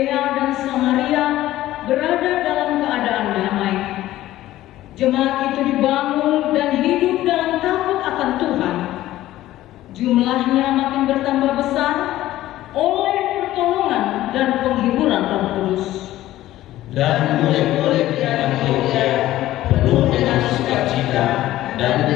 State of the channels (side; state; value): right; quieter; 14.9 dB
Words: dan Samaria berada dalam keadaan damai. Jemaat itu dibangun dan hidup dalam takut akan Tuhan. Jumlahnya makin bertambah besar oleh pertolongan dan penghiburan Roh Kudus. Dan murid-murid di Antiokhia penuh dengan sukacita dan